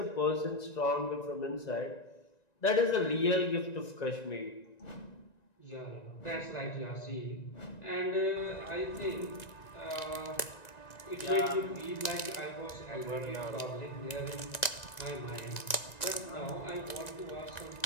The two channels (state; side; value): late; right; 1.9 ms